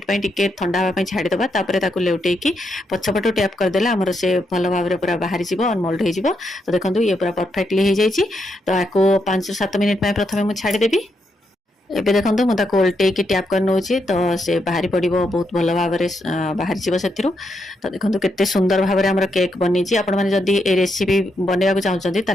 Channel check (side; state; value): both; normal; correlation 0.80